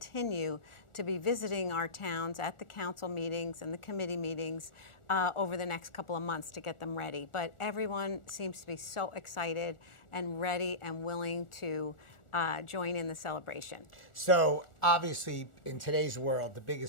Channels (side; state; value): right; late; 1.4 ms